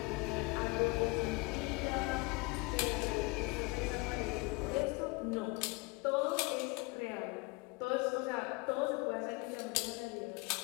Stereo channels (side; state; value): right; quieter; 26.5 dB